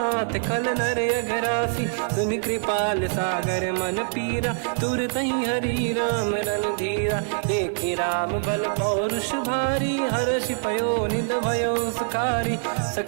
खल नर अघरासी सुनि कृपाल सागर मन पीरा तुरत ही हरि राम रन धीरा देखि राम बल पौरुष भारी हर्ष पयो निध भयो सुखारी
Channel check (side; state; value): left; silent; digital silence